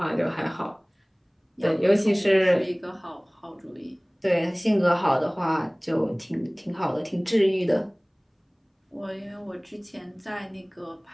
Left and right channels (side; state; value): both; identical; correlation 1.00